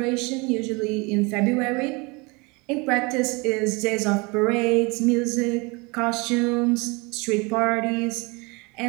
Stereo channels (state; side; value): quieter; left; 27.5 dB